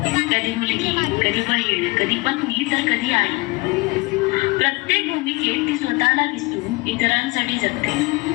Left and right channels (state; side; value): quieter; right; 24.1 dB